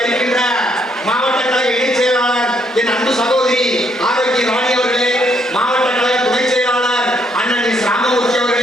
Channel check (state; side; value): normal; both; correlation 0.72